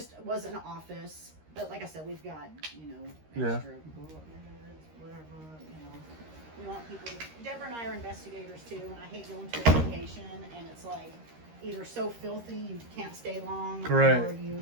was an office. But like I said, we've got, you know, Yeah. extra whatever, you know. We want people. Deborah and I are investigators too, and I hate going to a location and it's like either so filthy you can't stay long, Correct.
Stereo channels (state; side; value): late; left; 13 ms